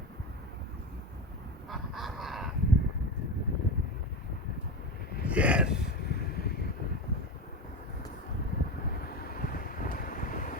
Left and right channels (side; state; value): both; normal; correlation 0.20